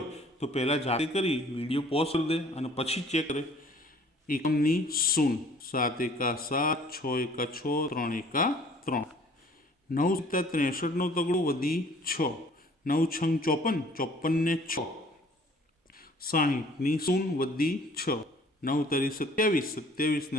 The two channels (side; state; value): both; normal; correlation 0.54